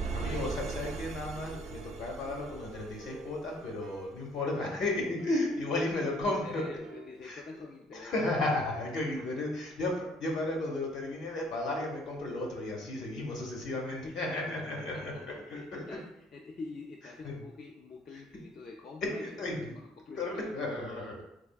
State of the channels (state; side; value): normal; both; correlation 0.59